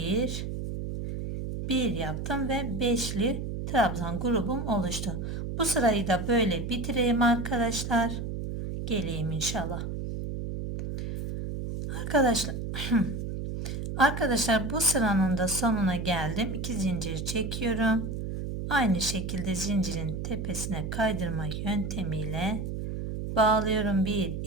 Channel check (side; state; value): right; noise; hum, 4 dB below the sound